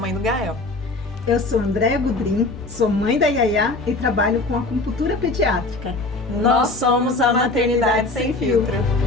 do Gael. Eu sou Andréa Gudrim, sou mãe da Yaya e trabalho com acupuntura pediátrica. Nós somos a Maternidade Sem Filtro.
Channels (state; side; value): quieter; right; 3.1 dB